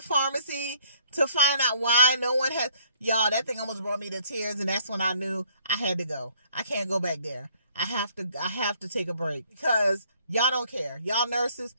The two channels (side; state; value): both; inverted; correlation -0.61